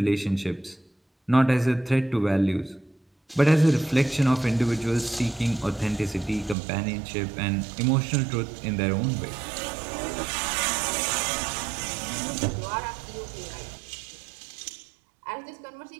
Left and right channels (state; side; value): drops out; left; at 6.6 s